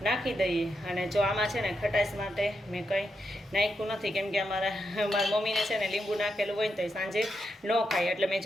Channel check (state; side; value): normal; both; correlation 0.84